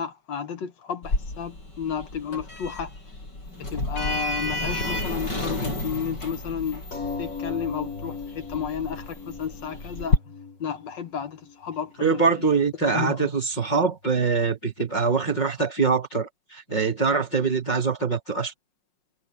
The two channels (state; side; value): late; right; 5.5 ms